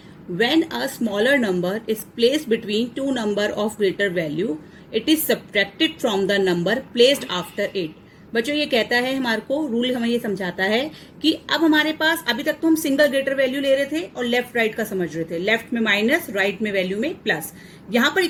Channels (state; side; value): identical; both; correlation 1.00